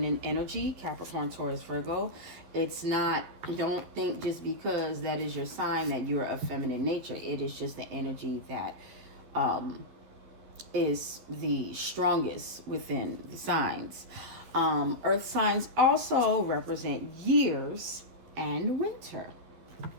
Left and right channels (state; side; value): late; left; 12 ms